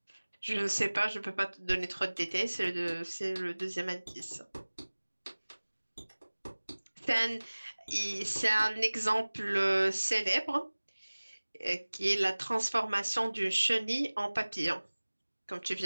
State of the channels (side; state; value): both; inverted; correlation -1.00